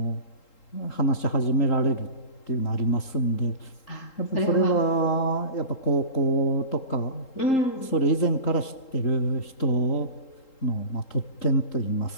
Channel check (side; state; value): right; late; 3.8 ms